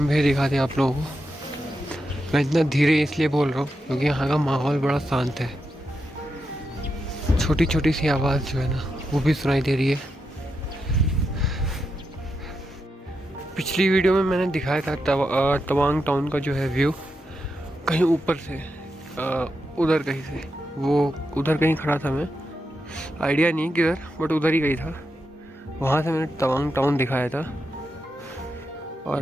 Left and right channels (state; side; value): normal; both; correlation 0.86